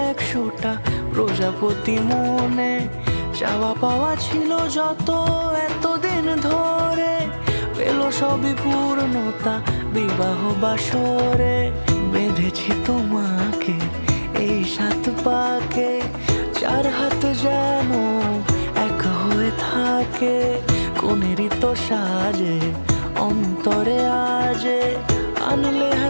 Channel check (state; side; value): inverted; both; correlation -1.00